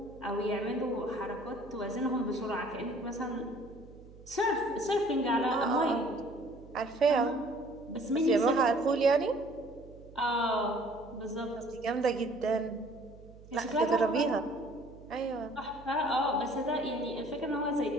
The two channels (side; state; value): right; noise; hum, 20 dB below the sound